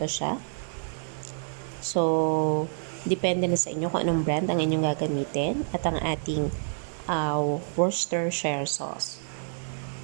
siya. So, depende na sa inyo kung anong brand ang inyong gagamitin. At ang ating Worcestershire sauce.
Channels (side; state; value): left; silent; digital silence